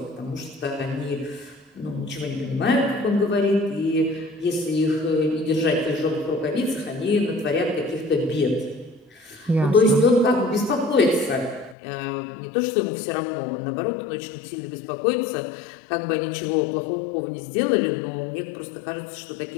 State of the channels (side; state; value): right; drops out; at 11.8 s